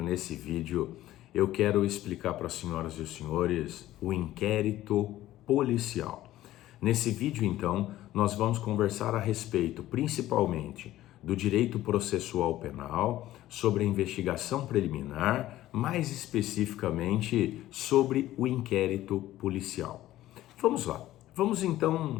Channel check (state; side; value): quieter; right; 14.7 dB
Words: nesse vídeo, eu quero explicar para as senhoras e os senhores o inquérito policial. Nesse vídeo, então, nós vamos conversar a respeito, principalmente, do direito processual penal, sobre a investigação preliminar, mais especificamente sobre o inquérito policial. Vamos lá. Vamos